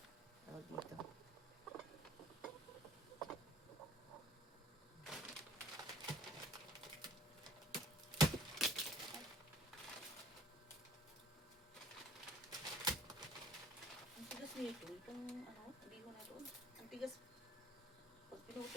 tawag dito. Nito, itong ano, hindi ko na doon. Ang tigas. Pag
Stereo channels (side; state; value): both; normal; correlation 0.55